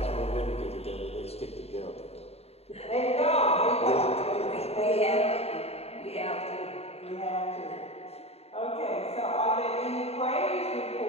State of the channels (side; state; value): right; late; 0.30 ms